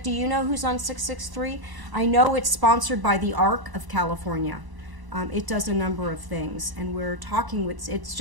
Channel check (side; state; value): left; late; 1.0 ms